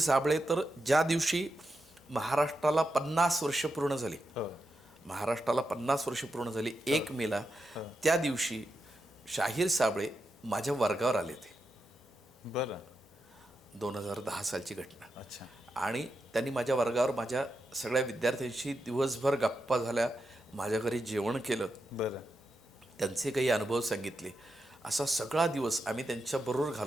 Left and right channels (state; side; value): normal; both; correlation 0.87